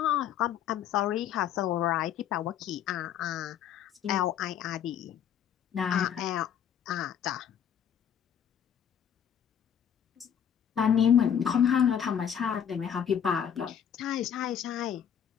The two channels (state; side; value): quieter; right; 8.9 dB